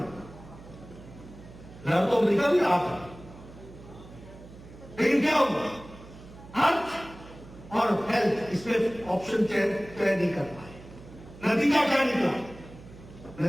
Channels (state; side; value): noise; right; hum, 18 dB below the sound